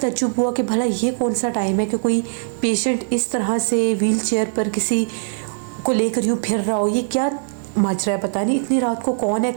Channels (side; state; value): left; silent; digital silence